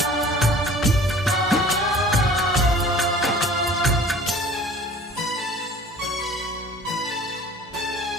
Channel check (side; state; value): both; normal; correlation 0.47